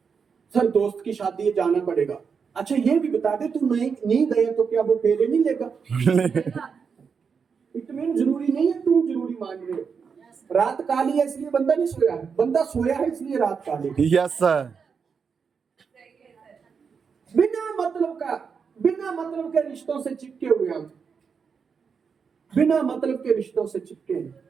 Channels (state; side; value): quieter; left; 6.0 dB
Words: सर दोस्त की शादी है, जाना पड़ेगा। अच्छा ये भी बता दे, तू नहीं गया तो क्या वो फेरे नहीं लेगा? इतनी जरूरी नहीं है, तुम जरूरी मान रहे हो। रात काली है इसलिए बंदा नहीं सोया है, बंदा सोया है इसलिए रात काली है। Yes, sir. बिना मतलब के रिश्तों से चिपके हुए हम, बिना मतलब के रिश्तों से चिपके हैं।